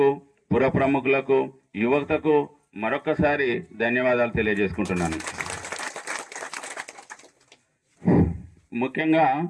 పుర ప్రముఖులకు, యువతకు మరొకసారి ధన్యవాదాలు తెలియజేసుకుంటున్నాను. ముఖ్యంగా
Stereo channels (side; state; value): both; identical; correlation 1.00